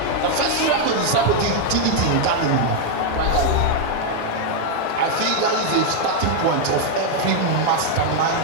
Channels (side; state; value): both; different; correlation 0.00